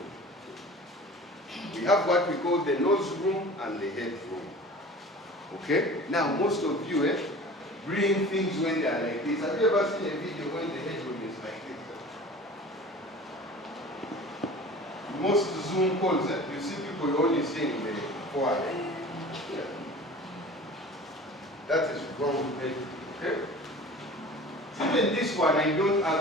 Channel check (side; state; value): both; normal; correlation 0.41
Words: We have what we call the nose room and the headroom. Okay? Now most of you bring things when they are like this. Have you ever seen a video when the headroom is like this? Most Zoom calls, you see people only seeing the forehead. Yeah. That is wrong. Okay? Even this one, I don't